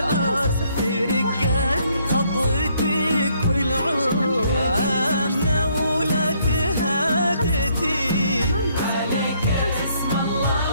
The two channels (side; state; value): both; inverted; correlation -0.69